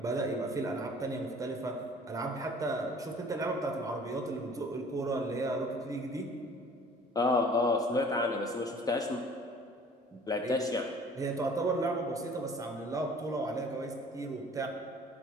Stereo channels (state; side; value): normal; both; correlation 0.51